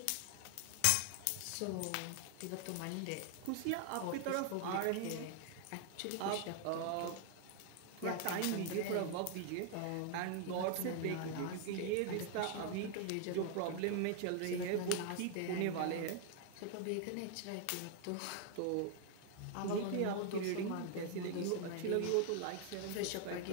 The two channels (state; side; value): different; both; correlation 0.00